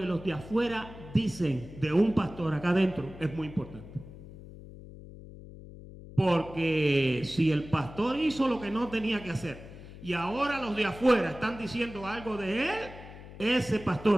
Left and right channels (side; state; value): left; noise; hum, 16 dB below the sound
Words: los de afuera dicen de un pastor acá adentro es muy importante. Porque si el pastor hizo lo que no tenía que hacer y ahora los de afuera están diciendo algo de él, ese